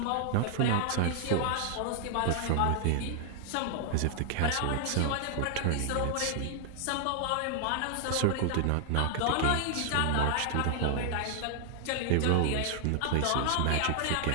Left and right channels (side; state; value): both; different; correlation 0.00